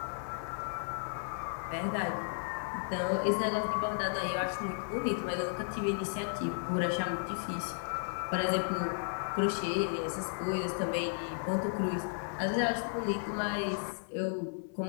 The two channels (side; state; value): right; silent; 55 dB below the other